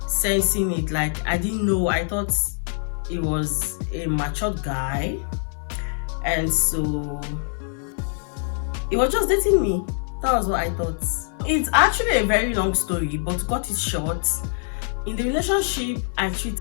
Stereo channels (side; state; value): right; silent; digital silence